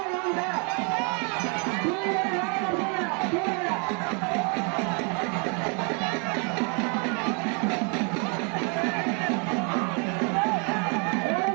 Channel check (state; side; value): quieter; left; 36.2 dB